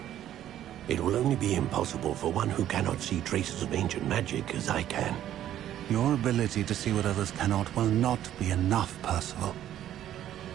It will only be impossible for one who cannot see traces of ancient magic as I can. Your ability to see what others cannot will not be enough, Percival.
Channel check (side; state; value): left; quieter; 11.7 dB